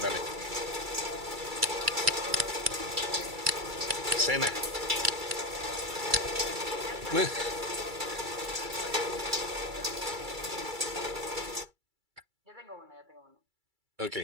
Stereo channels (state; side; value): late; left; 2.3 ms